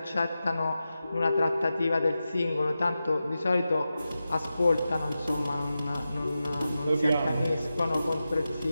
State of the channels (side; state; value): both; inverted; correlation -0.92